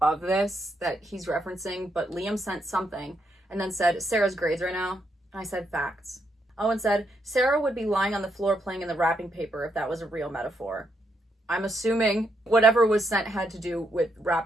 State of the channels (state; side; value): normal; both; correlation 0.78